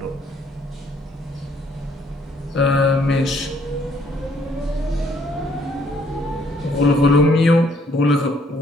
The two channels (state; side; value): normal; both; correlation 0.66